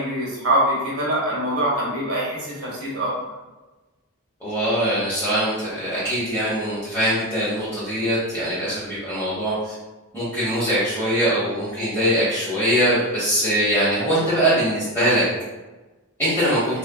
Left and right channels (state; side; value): normal; both; correlation 0.13